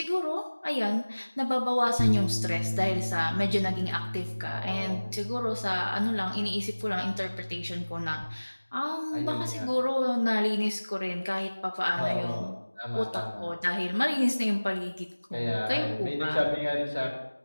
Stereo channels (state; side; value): inverted; both; correlation -1.00